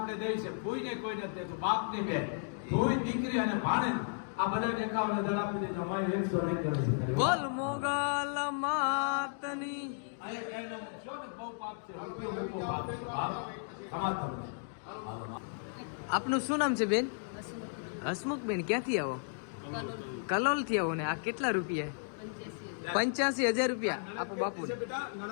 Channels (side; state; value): right; silent; digital silence